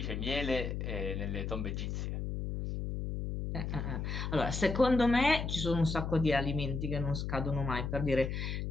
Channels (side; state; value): left; noise; hum, 3 dB below the sound